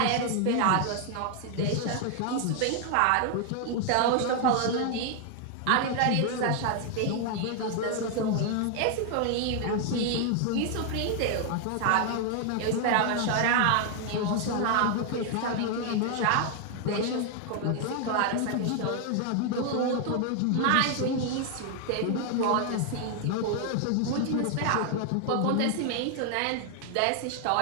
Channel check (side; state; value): both; different; correlation 0.00